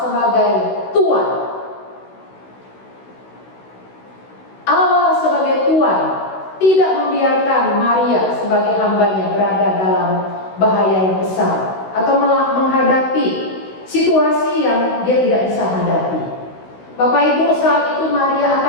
sebagai Tuhan. Allah sebagai Tuhan tidak membiarkan Maria sebagai hambanya berada dalam bahaya yang besar atau menghadapi situasi yang dia tidak bisa hadapi. Bapak Ibu, saat itu Maria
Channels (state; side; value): late; right; 16 ms